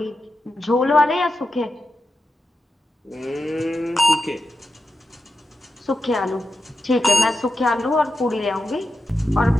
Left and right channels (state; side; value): normal; both; correlation 0.89